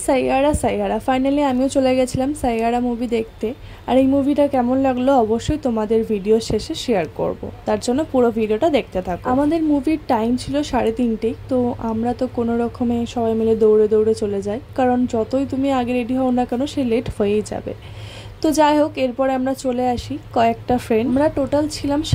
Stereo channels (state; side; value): identical; both; correlation 1.00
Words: Saiyaara Saiyaara finally আমিও চলে গেছিলাম সাইয়ারা মুভি দেখতে। আর এই মুভিটা কেমন লাগলো অবশ্যই তোমাদের ভিডিও শেষে শেয়ার করব, তার জন্য পুরো ভিডিওটা দেখতে থাকো। আমাদের মুভির টাইম ছিল 3:30, তো আমরা তো কোনো রকমে সবাই মিলে দৌড়ে দৌড়ে চলে যাই, কারণ যতই তুমি আগে রেডি হও না কেন সে লেট হয়েই যাবে। তো যাই হোক, এরপরে আমরা চলে আসি কয়েকটা ফ্রেন্ড, আমরা টোটাল ছিলাম